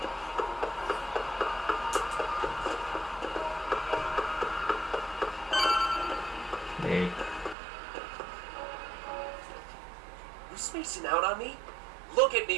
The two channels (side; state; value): left; drops out; at 7.6 s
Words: There. You spacing out on me? Look at